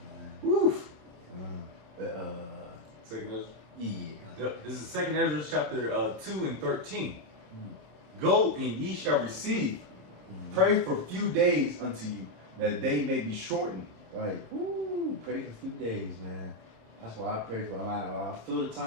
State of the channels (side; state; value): left; late; 27 ms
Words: man. Woof. Second Ezra. Yeah. Yep. This is Second Ezra chapter 2 and 13. Go and ye shall receive. Pray for a few days unto you, that they may be shortened. Right. Woo. Pray for a few days, man. That's why I pray for. I feel the